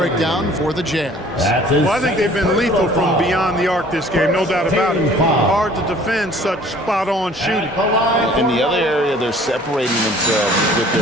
for the Jazz. Well, I think they've been lethal from beyond the arc this game, no doubt about it. Hard to defend such spot-on shooting. In the other area, they're separating themselves with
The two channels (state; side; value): normal; both; correlation 0.52